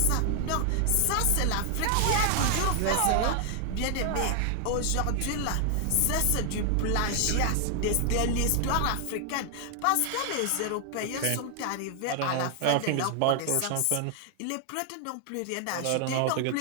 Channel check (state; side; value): different; both; correlation 0.00